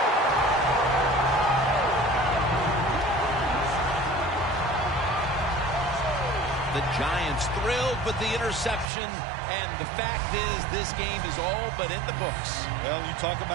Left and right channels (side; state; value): left; drops out; at 8.8 s